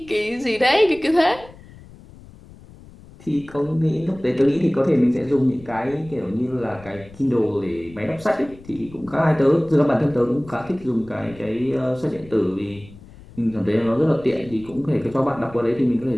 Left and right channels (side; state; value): left; noise; rumble, 21 dB below the sound